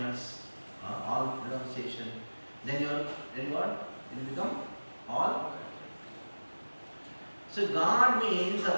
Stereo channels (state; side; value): inverted; both; correlation -1.00